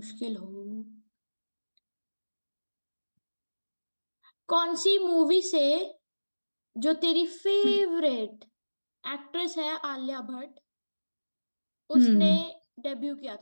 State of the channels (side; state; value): both; inverted; correlation -1.00